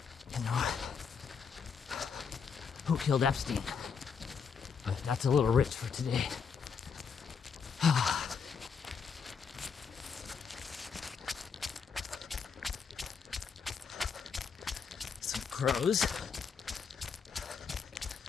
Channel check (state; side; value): quieter; right; 6.1 dB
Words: you know, who killed Epstein. But that's a little rich for today. Some crows.